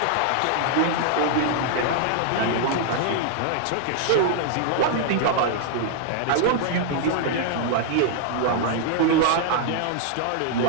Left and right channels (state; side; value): different; both; correlation 0.00